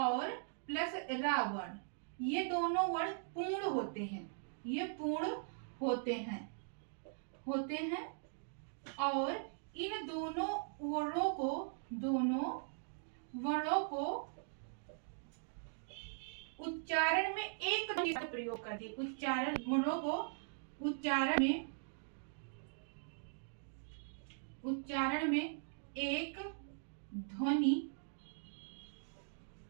प्लस रा वर्ण, ये दोनों वर्ण पूर्ण होते हैं, ये पूर्ण होते हैं और इन दोनों वर्णों को उच्चारण में एक प्रयोग कर दिए, उच्चारण वर्णों को उच्चारण में एक ध्वनि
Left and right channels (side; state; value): left; silent; digital silence